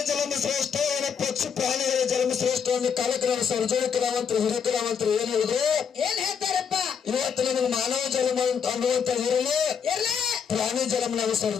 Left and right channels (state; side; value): quieter; right; 7.0 dB